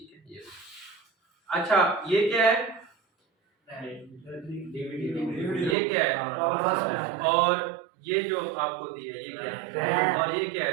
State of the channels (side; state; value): left; drops out; at 5.8 s